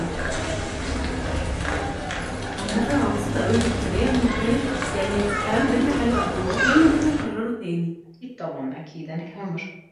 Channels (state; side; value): identical; both; correlation 1.00